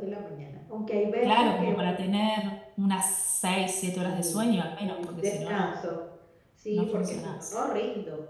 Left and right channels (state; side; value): identical; both; correlation 1.00